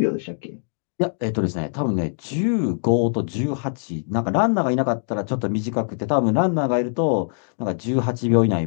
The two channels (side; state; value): right; silent; digital silence